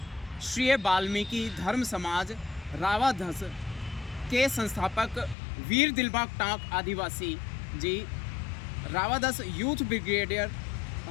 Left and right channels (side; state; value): right; drops out; at 5.4 s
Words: वाल्मीकि धर्म समाज रावाधस के संस्थापक वीर दिलबाग टांक आदिवासी जी, रावाधस यूथ ब्रिगेडियर